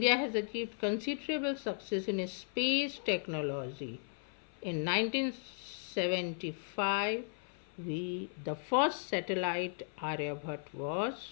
has achieved considerable success in space technology. In 1975, the first satellite Aryabhat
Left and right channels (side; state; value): right; silent; 54 dB below the other